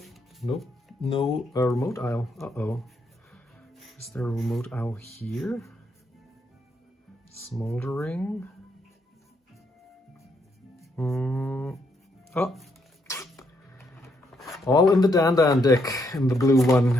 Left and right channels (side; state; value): both; normal; correlation 0.75